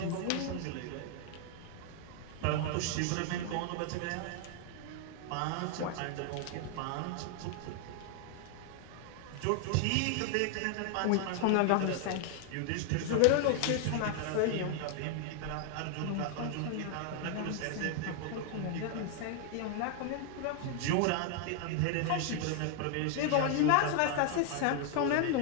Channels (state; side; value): different; both; correlation 0.00